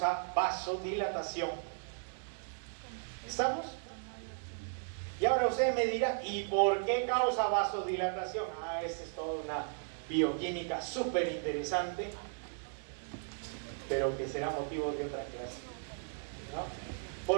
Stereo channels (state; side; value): silent; left; digital silence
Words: vasodilatación. ¿Estamos? Y ahora usted me dirá, ¿y por qué causa vasodilatación? Esta es toda una bioquímica súper interesante, pero que será motivo de otra clase, ¿no?